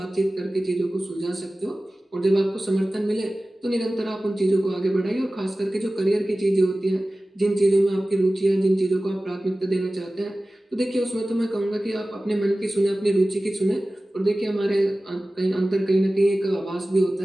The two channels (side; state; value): both; normal; correlation 0.97